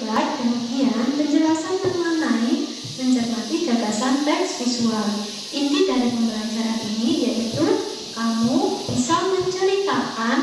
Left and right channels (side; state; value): both; identical; correlation 1.00